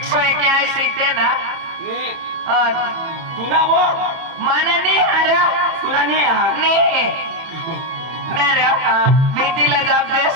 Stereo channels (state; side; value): late; left; 30 ms